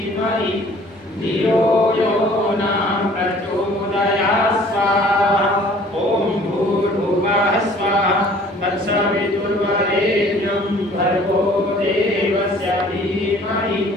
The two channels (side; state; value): both; normal; correlation 0.53